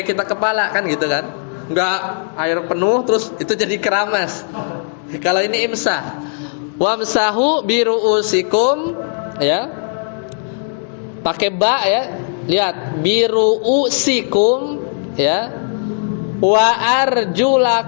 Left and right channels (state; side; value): silent; right; 68 dB below the other